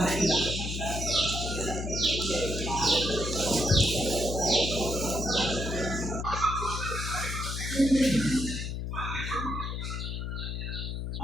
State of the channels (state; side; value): noise; left; hum, 4 dB below the sound